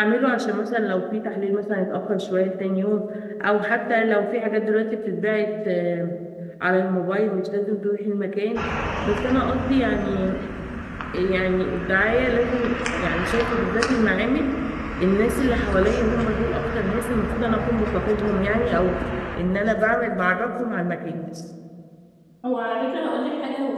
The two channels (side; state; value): both; identical; correlation 1.00